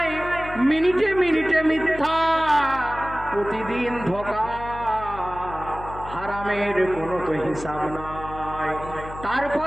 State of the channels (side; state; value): left; noise; hum, 13 dB below the sound